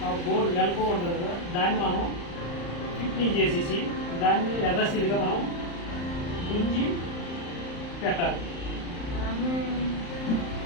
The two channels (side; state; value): right; late; 35 ms